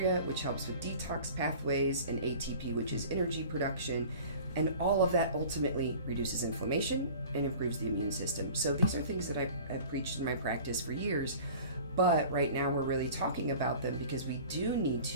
which helps with detox pathways, and ATP, which is energy production. And all of that ultimately reduces inflammation and improves the immune system. So these are things that I've preached in my practice for years. But right now we're really talking about them because we do need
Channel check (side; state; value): both; inverted; correlation -0.43